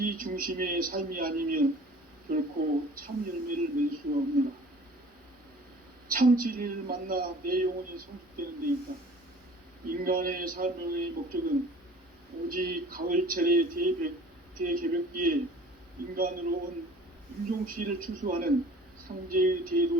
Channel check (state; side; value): normal; both; correlation 0.48